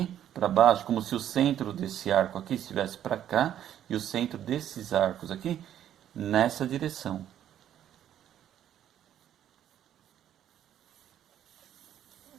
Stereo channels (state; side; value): quieter; left; 10.8 dB